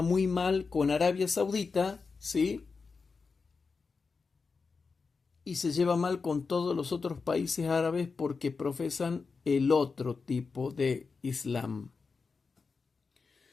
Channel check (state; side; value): quieter; right; 4.7 dB